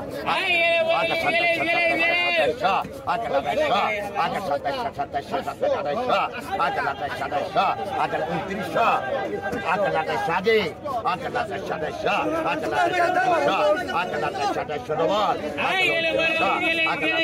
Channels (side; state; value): both; identical; correlation 1.00